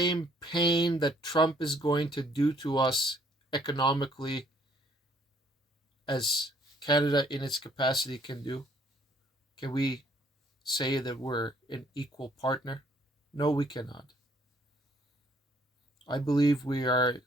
pain that Trump is going to do to us economically as Canada in its capacity can do? Can we say that we're an equal partner? No, we cannot. I believe we are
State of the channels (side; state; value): both; normal; correlation 0.63